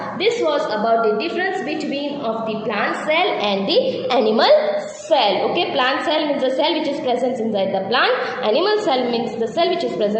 This was about the difference between of the plant cell and the animal cell. Okay, plant cell means the cell which is present inside the plant. Animal cell means the cell which is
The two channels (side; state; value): both; identical; correlation 1.00